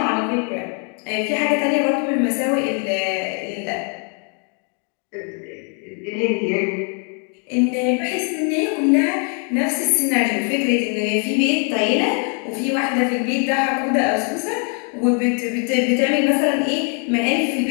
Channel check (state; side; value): quieter; right; 39.8 dB